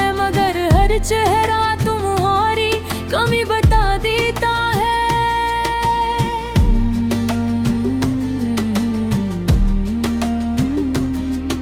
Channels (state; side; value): identical; both; correlation 1.00